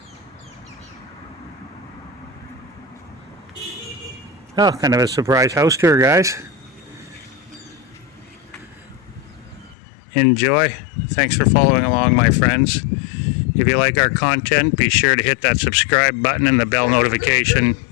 Oh, kind of a surprise house tour, guys. Enjoy. Thanks for following along, my friends. If you like our content, be sure to hit that subscribe button and the bell notification.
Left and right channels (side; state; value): right; drops out; at 9.8 s